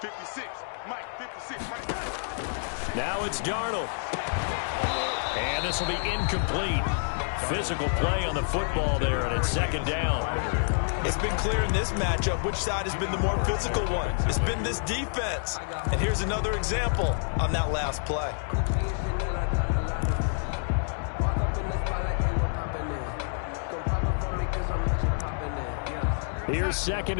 Mike, 56, Mike. Now it's Darnold. And this will be incomplete. Physical play on the football there, and it's 2nd down. It's been clear in this matchup which side has been the more physical one. It's been this defense. And here's another example on that last play. Here's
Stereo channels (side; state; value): right; silent; digital silence